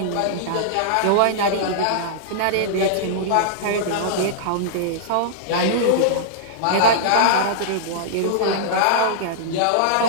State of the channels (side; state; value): both; different; correlation -0.02